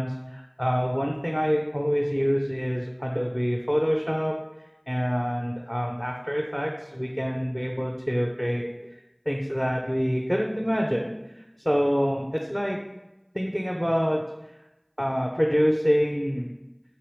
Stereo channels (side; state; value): both; identical; correlation 1.00